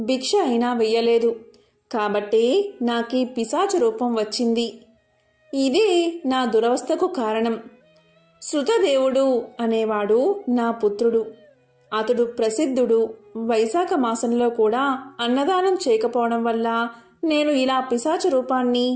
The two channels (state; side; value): identical; both; correlation 1.00